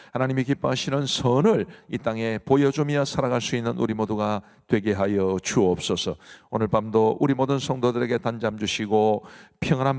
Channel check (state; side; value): identical; both; correlation 1.00